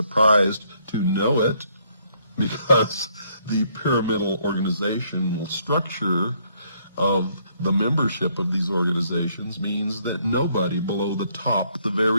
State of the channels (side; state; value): both; inverted; correlation -0.69